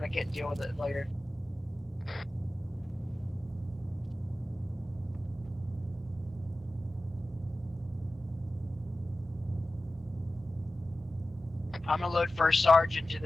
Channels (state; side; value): normal; both; correlation 0.95